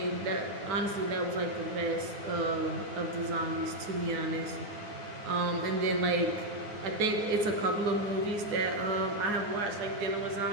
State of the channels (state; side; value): late; left; 9.5 ms